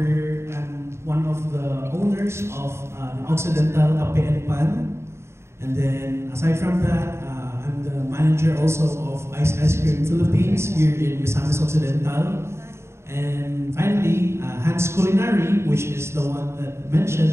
one of the owners of Occidental Cafe and Pan. And then, aside from that, I'm the manager also of Ice Cream Philippines here in Misamis Occidental. And finally, Hans Culinary, which is the one that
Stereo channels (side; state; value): left; late; 0.13 ms